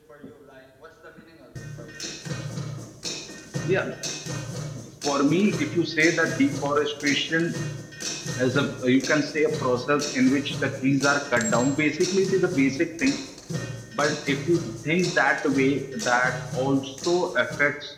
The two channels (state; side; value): identical; both; correlation 1.00